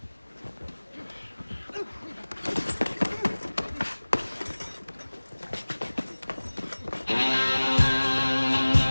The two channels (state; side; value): inverted; both; correlation -1.00